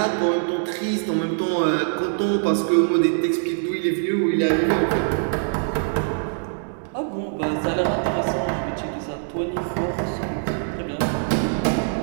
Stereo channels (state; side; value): silent; left; digital silence